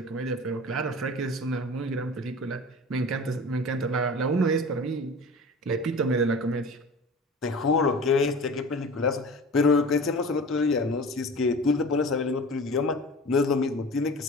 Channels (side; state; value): both; normal; correlation 0.37